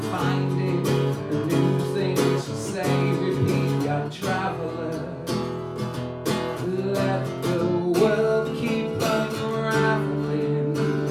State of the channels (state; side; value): identical; both; correlation 1.00